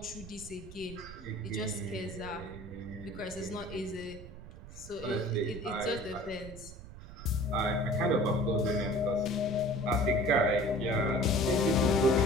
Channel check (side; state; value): right; noise; rumble, 15 dB below the sound